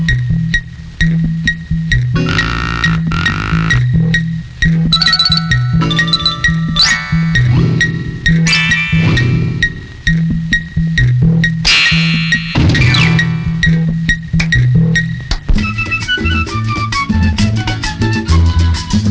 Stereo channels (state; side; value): identical; both; correlation 1.00